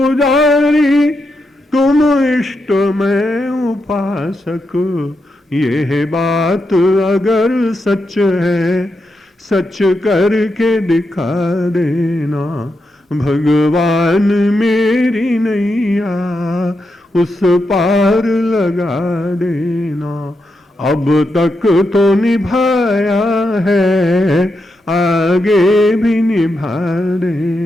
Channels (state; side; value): normal; both; correlation 0.85